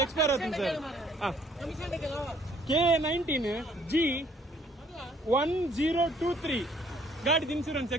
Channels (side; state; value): both; normal; correlation 0.62